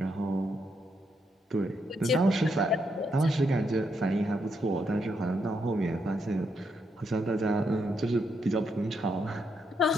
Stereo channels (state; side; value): normal; both; correlation 0.79